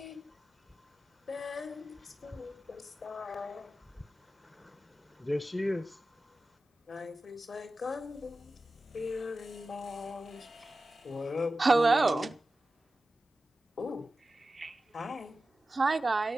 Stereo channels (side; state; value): both; normal; correlation 0.94